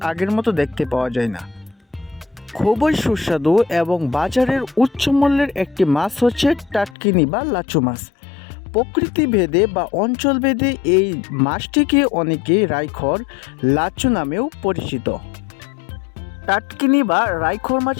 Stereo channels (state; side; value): drops out; right; at 7.0 s